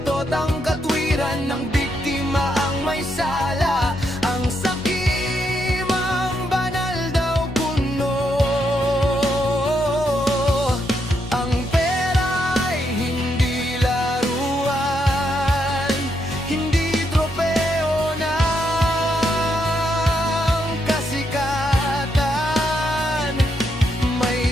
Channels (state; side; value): normal; both; correlation 0.79